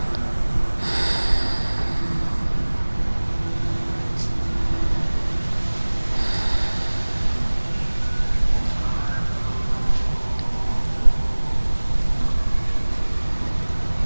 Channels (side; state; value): both; inverted; correlation -1.00